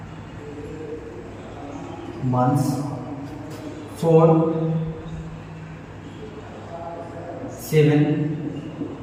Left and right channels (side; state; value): both; identical; correlation 1.00